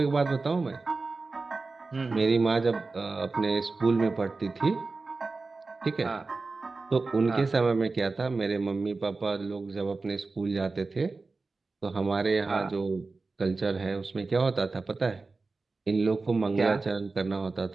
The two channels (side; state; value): left; quieter; 3.8 dB